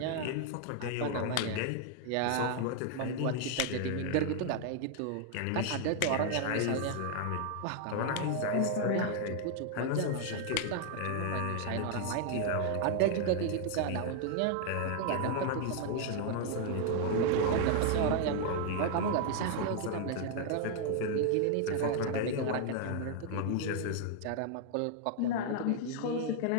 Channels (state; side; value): different; both; correlation 0.00